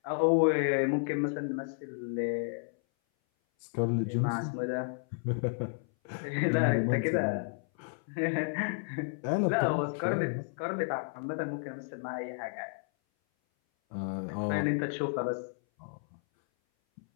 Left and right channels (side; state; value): right; silent; 56 dB below the other